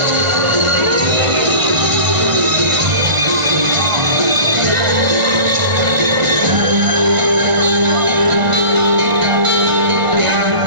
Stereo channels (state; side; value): late; left; 1.5 ms